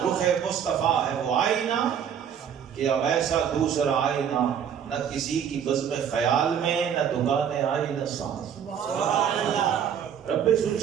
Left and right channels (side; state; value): left; quieter; 8.4 dB